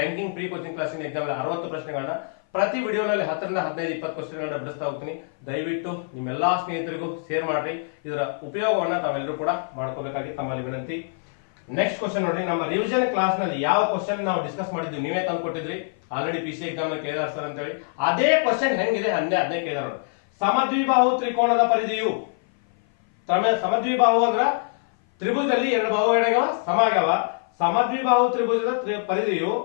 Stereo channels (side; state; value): right; silent; 57 dB below the other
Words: ಪ್ರೀ ಕೋಚಿಂಗ್ ಕ್ಲಾಸಿನ ಎಕ್ಸಾಮ್ 60 ಪ್ರಶ್ನೆಗಳನ್ನ ಪ್ರತಿ ವಿಡಿಯೋನಲ್ಲಿ 10 ರಿಂದ 15 20 ಕ್ವಶನ್ಗಳನ್ನ ಬಿಡಿಸ್ತಾ ಹೋಗ್ತೀನಿ. ದಯವಿಟ್ಟು ನಿಮ್ಮೆಲ್ಲಾ ಸ್ನೇಹಿತರಿಗೂ ಶೇರ್ ಮಾಡ್ರಿ. ಇದರ ಉಪಯೋಗವನ್ನ ತಾವೆಲ್ಲರೂ ಕೂಡ ಮಾಡ್ಕೋಬೇಕಾಗಿ ತಮ್ಮಲ್ಲಿ ವಿನಂತಿ. ನೆಕ್ಸ್ಟ್ ಕ್ವಶನ್ ನೋಡಿ, ನಮ್ಮ ರಿವಿಷನ್ ಕ್ಲಾಸ್ ನಲ್ಲಿ ಯಾವ ಕ್ವಶನ್ ನಾವು ಡಿಸ್ಕಸ್ ಮಾಡಿದ್ವಿ ನೀವೇ ತಂದು ಕೊಟ್ಟಿದ್ರಿ ಆಲ್ರೆಡಿ PC ಎಕ್ಸಾಮ್ ನಲ್ಲಿ ಕೇಳಿದಾರೆ ಸರ್ ಅಂತ ಹೇಳಿ. ಅದೇ ಕ್ವಶನ್ ಹೆಂಗಿದೆ ಅದನ್ನೇ ಕೇಳಿದಾರೆ ನೋಡಿ. ಸಮದ್ವಿಬಾಹು ತ್ರಿಕೋನದ ಪರಿಧಿಯು, ಸಮದ್ವಿಬಾಹು ಅಂದ್ರ ತ್ರಿಭುಜದಲ್ಲಿ 2 ಬಾಹುಗಳಾಗ್ಯಾವ ಸಮ ಆಗ್ಯಾವ. ಸಮದ್ವಿಬಾಹು ತ್ರಿಭುಜದ ಪರಿಧಿಯು